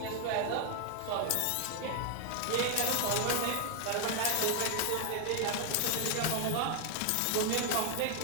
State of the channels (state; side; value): different; both; correlation 0.00